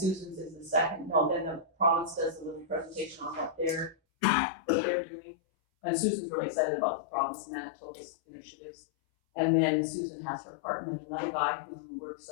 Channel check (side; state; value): right; drops out; at 4.0 s